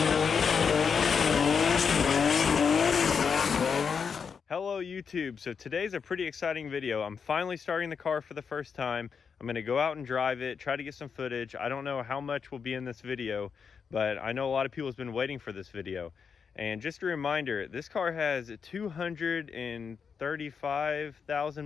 Hello YouTube. So today's a pretty exciting video. I'm finally starting the car for the first time. I'm going to go out and drive it, try to get some footage. I don't know how much will be in this video, but I know a lot of people have been waiting for this video. And just a reminder, this car has 235,000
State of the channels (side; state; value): right; quieter; 6.2 dB